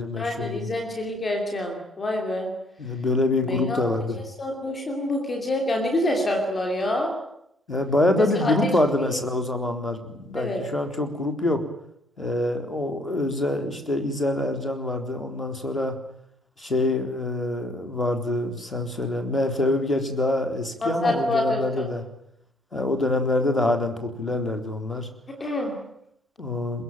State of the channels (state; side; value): normal; both; correlation 0.64